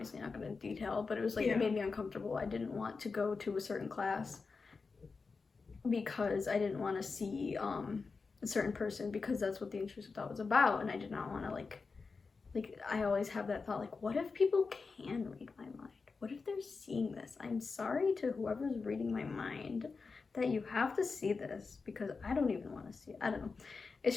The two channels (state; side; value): quieter; right; 4.5 dB